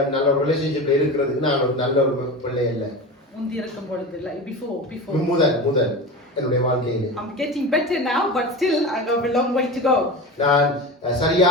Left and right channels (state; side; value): normal; both; correlation 0.28